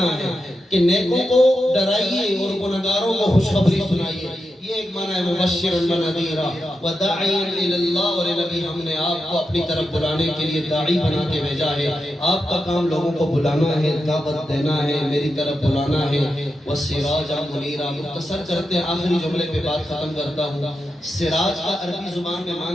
ہے کہ نیکوں کو ڈرائیے اور گناہگاروں کو خوشخبری سنائیے۔ یہ ایک معنی ہے مبشرا ونذیرا وداعیا الی اللہ، اور نبی ہم نے آپ کو اپنی طرف بلانے کے لیے داعی بنا کے بھیجا ہے۔ آپ کا کام لوگوں کو بلانا ہے، دعوت دینا ہے، میری طرف بلانا ہے۔ وسراجا منیرا، مختصر کرتے ہیں آخری جملے پہ بات ختم کرتا ہوں۔ سراج کا عربی زبان میں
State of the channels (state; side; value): normal; both; correlation 0.88